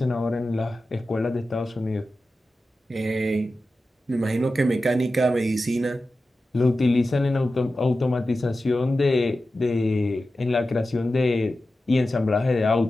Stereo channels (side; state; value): both; normal; correlation 0.93